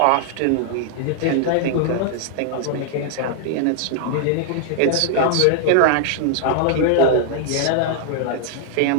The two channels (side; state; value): both; different; correlation 0.00